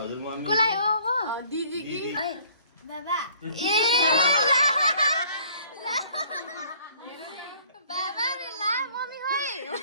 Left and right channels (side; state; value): both; inverted; correlation -0.57